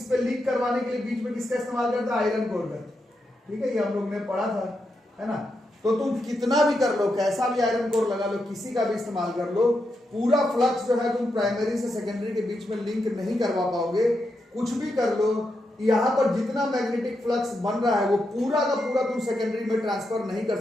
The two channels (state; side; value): normal; both; correlation 0.84